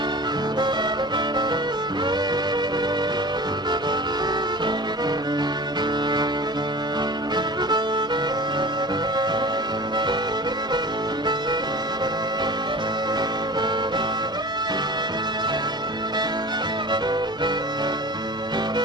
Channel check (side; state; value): both; normal; correlation 0.37